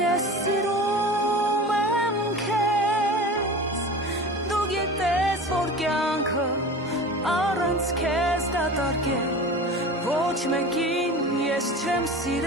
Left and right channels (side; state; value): both; normal; correlation 0.35